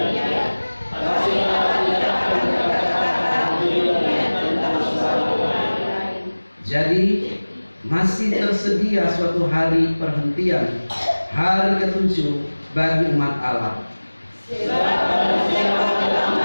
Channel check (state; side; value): inverted; both; correlation -1.00